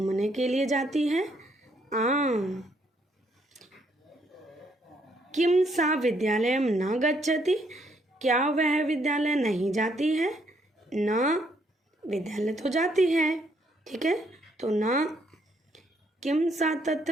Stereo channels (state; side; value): normal; both; correlation 0.71